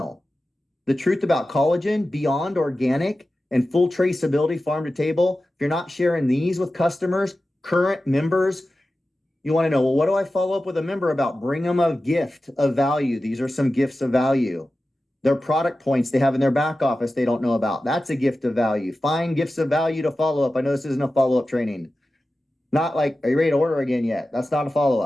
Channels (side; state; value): both; normal; correlation 0.94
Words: The truth about collagen, beyond organic, and full traceability farm to table. If you're not sharing these with customers, current members, you want to know, well, what do I follow up with a member about? Bring them a gift of value. These are some gifts of value. Their product points they have in their back office they don't know about. That's a gift of value. Find gifts of value to follow up. I know this isn't a follow-up training. Not like, are you ready to order again yet? That's not a